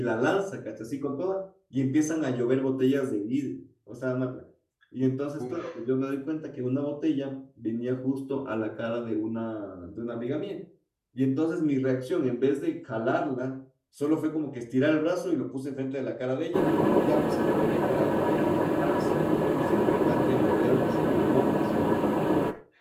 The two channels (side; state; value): both; identical; correlation 1.00